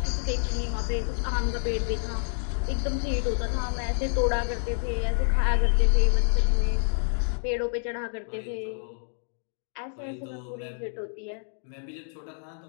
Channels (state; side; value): silent; right; 59 dB below the other